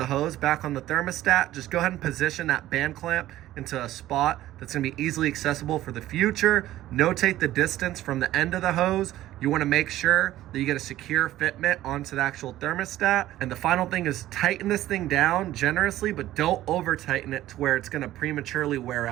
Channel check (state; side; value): quieter; left; 14.5 dB